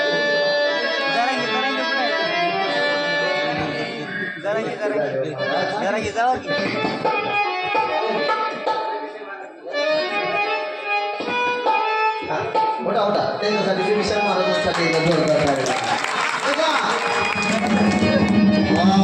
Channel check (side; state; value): both; identical; correlation 1.00